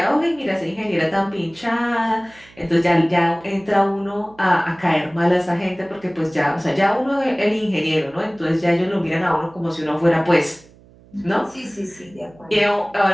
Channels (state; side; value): noise; right; hum, 26 dB below the sound